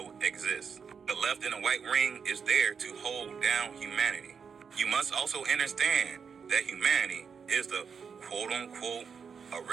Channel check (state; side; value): quieter; left; 6.3 dB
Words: exists. The left and the white ring is there to hold down humanity. You must also understand that humanity is the quote-unquote